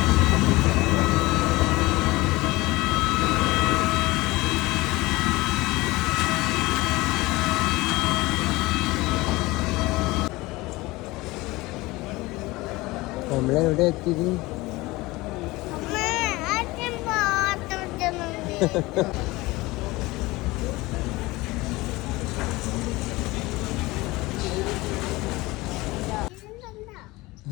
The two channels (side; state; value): right; quieter; 21.0 dB